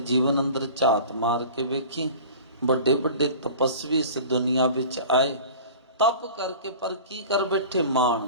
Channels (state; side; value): inverted; both; correlation -0.40